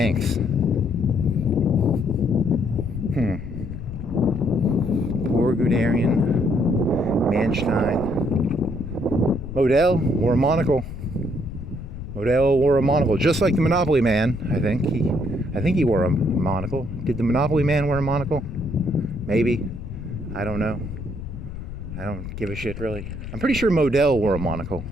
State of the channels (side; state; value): left; noise; rumble, 9 dB below the sound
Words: Poor Guderian. Manstein. Model wore a monocle. Just like the Monopoly Man, I think. I think he wore a monocle. Did the Monopoly Man wear a monocle? Maybe. I don't know. I don't give a shit, really. I'm pretty sure Model wore a monocle.